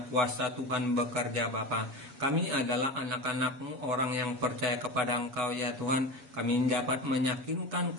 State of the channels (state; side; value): late; left; 7.2 ms